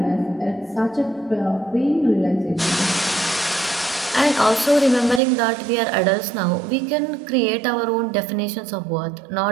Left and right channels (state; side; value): drops out; left; at 5.2 s